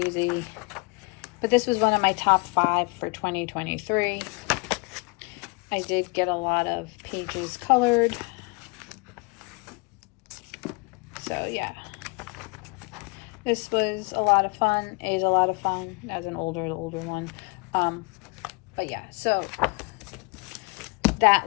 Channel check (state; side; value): quieter; right; 28.8 dB